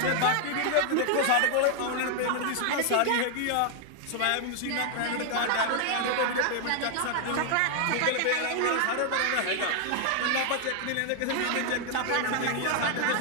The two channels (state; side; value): different; both; correlation 0.00